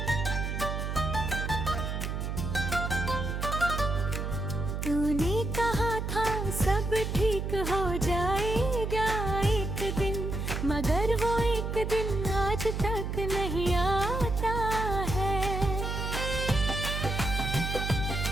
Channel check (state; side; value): noise; right; hum, 3 dB below the sound